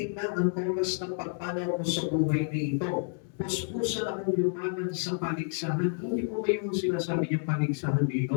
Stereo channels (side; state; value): right; silent; 58 dB below the other